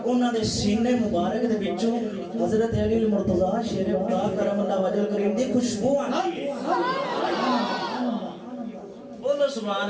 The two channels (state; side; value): identical; both; correlation 1.00